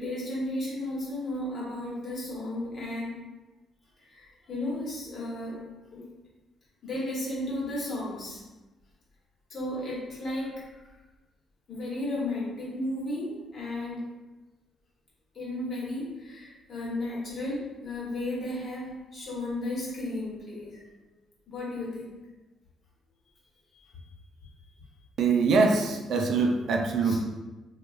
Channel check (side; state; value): both; normal; correlation 0.66